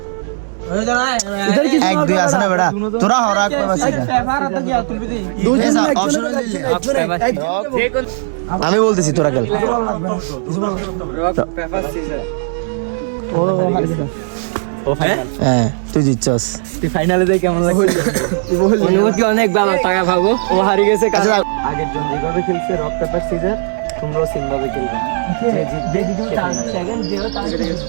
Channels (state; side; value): silent; left; 65 dB below the other